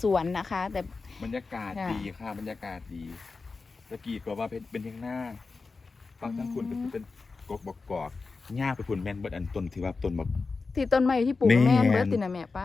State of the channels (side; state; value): right; quieter; 4.2 dB